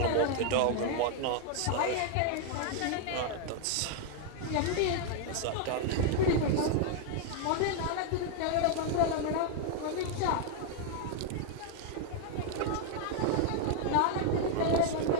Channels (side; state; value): both; different; correlation 0.00